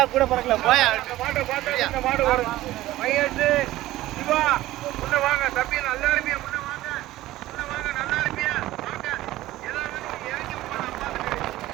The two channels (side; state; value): left; quieter; 16.0 dB